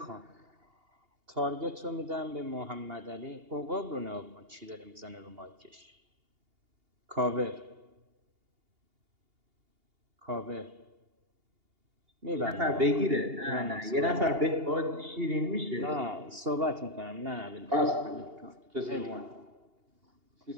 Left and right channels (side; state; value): left; late; 2.8 ms